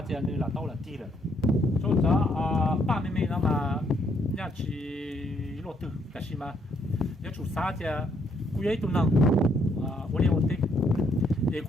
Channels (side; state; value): both; normal; correlation 0.71